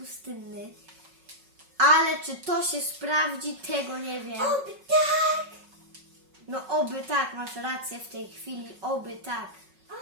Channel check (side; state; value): left; late; 5.4 ms